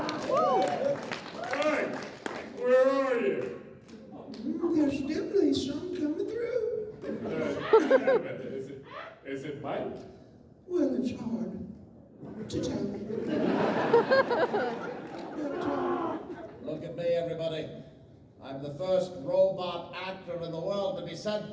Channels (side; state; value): both; identical; correlation 1.00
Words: Mike, where are you? There's definitely some coming through. Is it Mike? Well, it's hard to tell. Look at me, everybody. I'm the first robot actor in the world to be sent